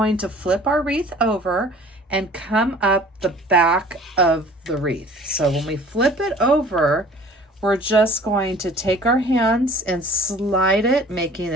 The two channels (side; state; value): both; normal; correlation 0.49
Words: to flip our wreath over and come up the back of the wreath. So when we flip it over, we're just going to take our hands and slide it, making